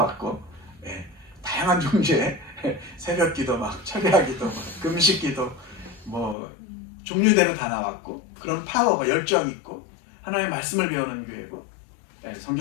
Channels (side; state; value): right; drops out; at 6.4 s